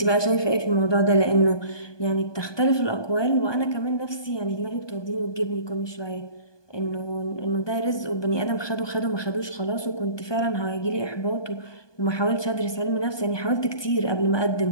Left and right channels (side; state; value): right; late; 1.2 ms